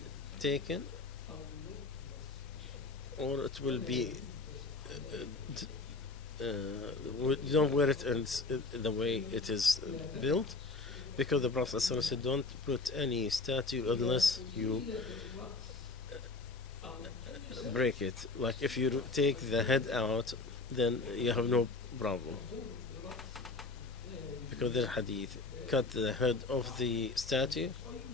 taken or it will be don't wear it in the way it is built, because the Prophet said don't put any statue unless you break it. Like if you take the head out, then you have no problem, because the hadith cut the head of the statue,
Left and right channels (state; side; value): quieter; right; 3.6 dB